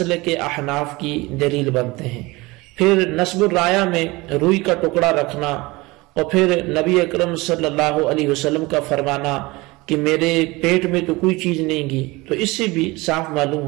کے احناف کی دلیل بنتے ہیں۔ پھر نصب الرایہ میں روئی کا ٹکڑا رکھنا، اور پھر نبی اکرم صلی اللہ علیہ وسلم کا فرمانا کہ میرے پیٹ میں تو کوئی چیز نہیں گی، تو اس سے بھی صاف معلوم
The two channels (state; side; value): quieter; left; 22.5 dB